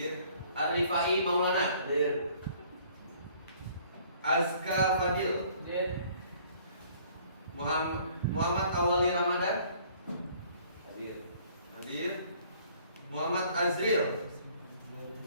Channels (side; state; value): both; inverted; correlation -0.57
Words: Arifai Maulana. Azka Fadil. Muhammad Awali Ramadan. Hadir. Muhammad Azril.